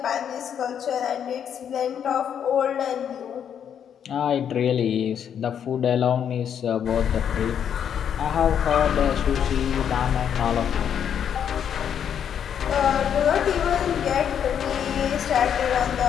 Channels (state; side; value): quieter; right; 8.6 dB